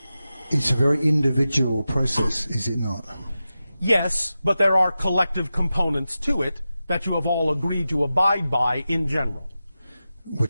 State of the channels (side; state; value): both; inverted; correlation -0.93